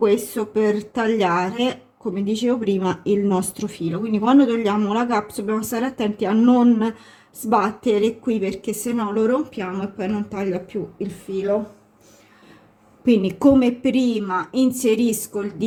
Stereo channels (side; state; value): both; identical; correlation 1.00